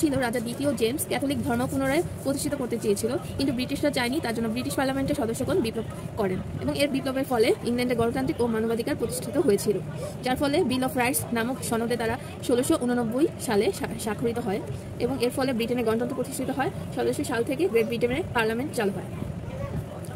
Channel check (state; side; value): identical; both; correlation 1.00